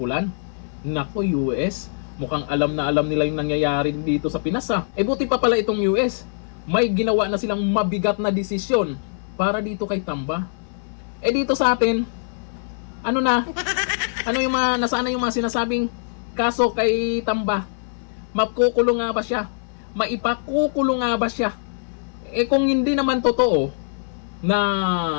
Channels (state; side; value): silent; right; 58 dB below the other